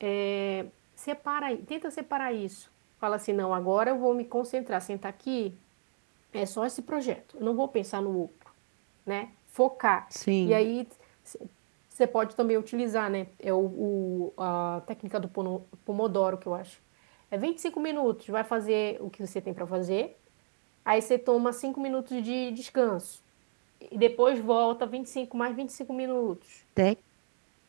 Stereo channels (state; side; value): silent; left; digital silence